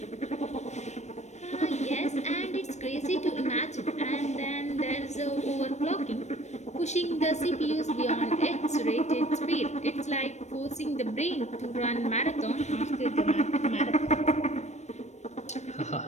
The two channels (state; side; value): late; right; 0.33 ms